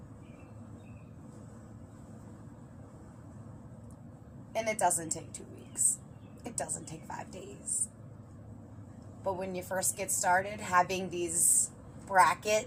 And it doesn't take 2 weeks. It doesn't take 5 days. But when you first get started, having these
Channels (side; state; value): both; identical; correlation 1.00